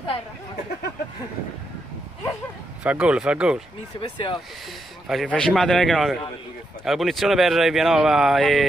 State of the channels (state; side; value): normal; both; correlation 0.82